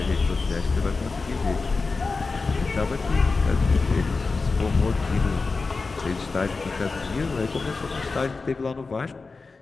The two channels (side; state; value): right; quieter; 4.1 dB